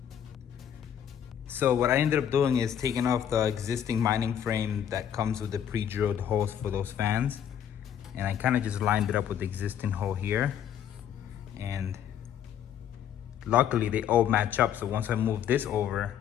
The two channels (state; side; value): quieter; right; 9.5 dB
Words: So what I ended up doing is taking off the existing mining frame that comes with the pre-drilled holes for those fans. And I kind of just lined it up with the existing hole here. And luckily they all match up. So once I move this over,